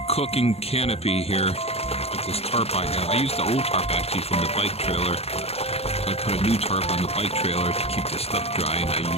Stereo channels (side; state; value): right; late; 0.29 ms